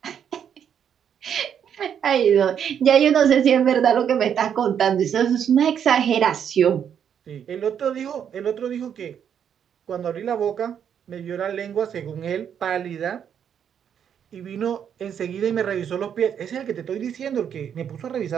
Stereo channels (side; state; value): left; quieter; 8.4 dB